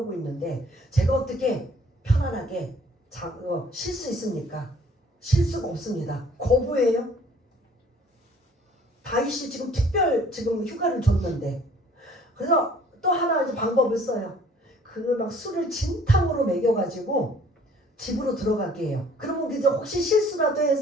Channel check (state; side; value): normal; both; correlation 0.56